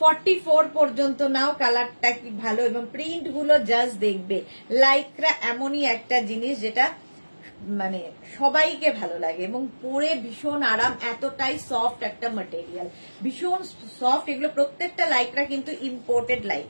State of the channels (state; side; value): inverted; both; correlation -1.00